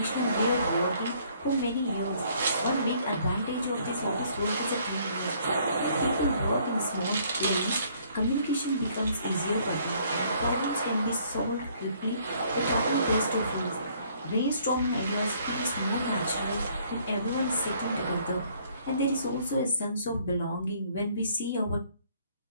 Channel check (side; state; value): both; inverted; correlation -0.62